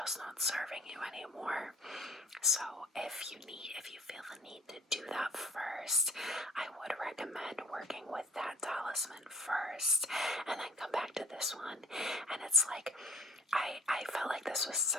not serving you anymore. So if you feel the need to do that first, I would recommend working with that talisman first and then come back to this one. And it's like I felt like this was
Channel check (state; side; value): normal; both; correlation 0.53